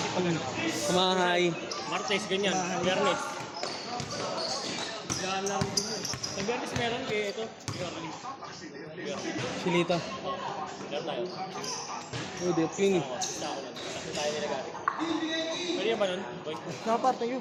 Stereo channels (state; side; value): identical; both; correlation 1.00